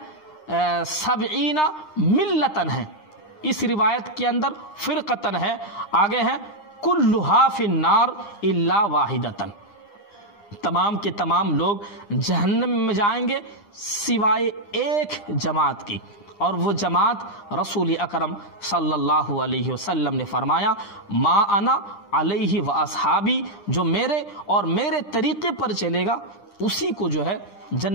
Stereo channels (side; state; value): right; late; 9.8 ms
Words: 70 ملتن ہے، اس روایت کے اندر فرقتن ہے، آگے ہے کلھا فی النار الا واحدۃ، تمام کے تمام لوگ جہنم میں جائیں گے سوائے ایک جماعت کی، اور وہ جماعت رسول اکرم صلی اللہ علیہ وسلم نے فرمایا، ما انا علیہ و اصحابی، جو میرے اور میرے طریقے پر چلے گا اسی کو جو ہے